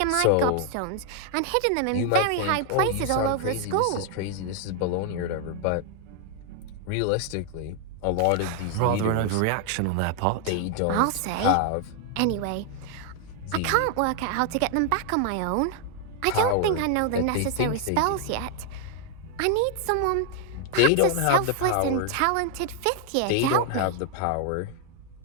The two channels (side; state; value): both; different; correlation 0.00